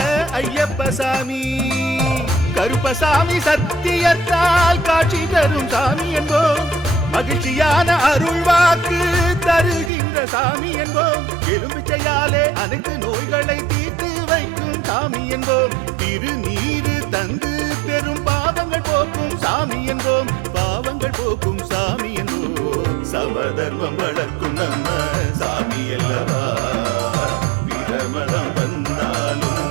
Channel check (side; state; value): left; drops out; at 9.9 s